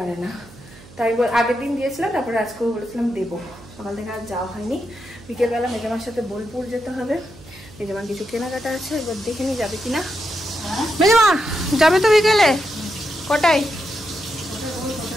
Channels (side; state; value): right; noise; hum, 21 dB below the sound